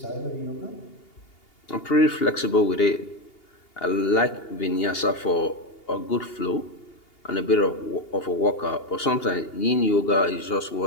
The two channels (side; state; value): right; late; 2.8 ms